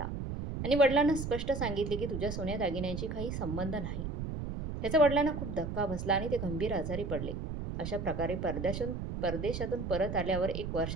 आणि वडिलांना स्पष्ट सांगितले की तुझ्या सोन्या दागिन्यांशी काही संबंध नाही. त्याचा वडिलांना खूप धक्का बसला आणि ते गंभीर आजारी पडले. अशा प्रकारे परदेशातून परत आल्यावर 1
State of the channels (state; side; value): noise; right; rumble, 5 dB below the sound